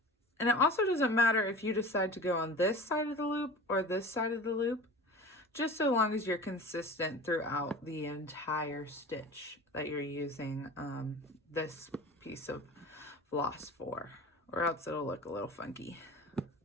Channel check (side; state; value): both; normal; correlation 0.37